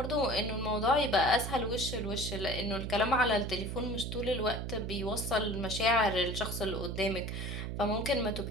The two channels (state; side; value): noise; right; hum, 4 dB below the sound